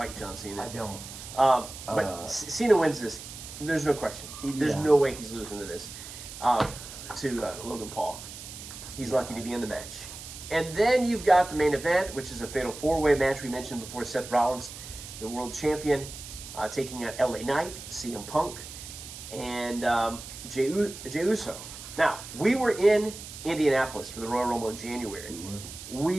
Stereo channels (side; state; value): right; noise; hiss, 12 dB below the sound